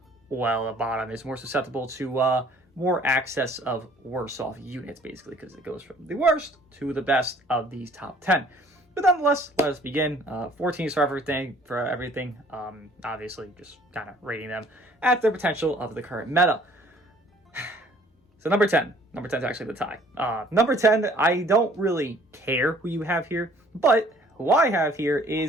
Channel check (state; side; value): normal; both; correlation 0.56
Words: well, the bottom is more susceptible to more access of worse off units, basically, because it goes from the worst to the best of these top 10. But nonetheless, let us begin. 14 for everything. Obviously, just kind of rating them at their potential of the current meta. So number 10. Number 10 is actually the tie. Number 10, I don't really care who you have here, but who I have here